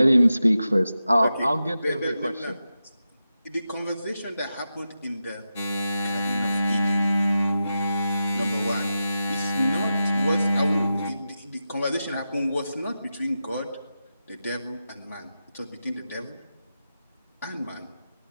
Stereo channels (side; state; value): both; inverted; correlation -0.91